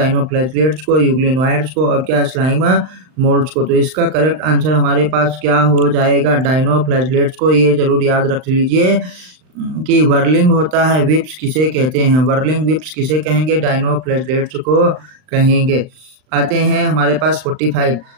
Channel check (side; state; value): left; late; 39 ms